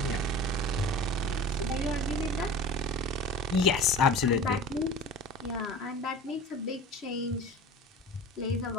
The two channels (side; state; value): both; normal; correlation 0.37